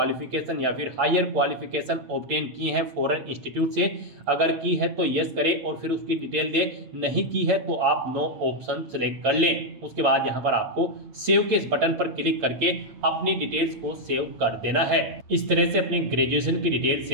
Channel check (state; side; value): late; left; 8.6 ms